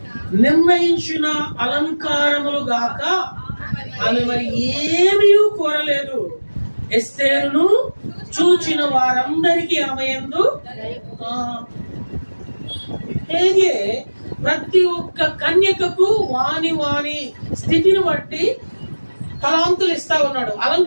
నిర్ణయించిన అలంకారములు గాక ఆమె మరి ఏమీ కోరలేదు. ఎస్తేరును చూచిన వారందరికీ ఆమె యందు హేగే ప్రతి ఒక్క కన్యకకు వాని స్థితిని బట్టి తలాంతులు ఇస్తా ఉన్నాడు,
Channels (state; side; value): inverted; both; correlation -1.00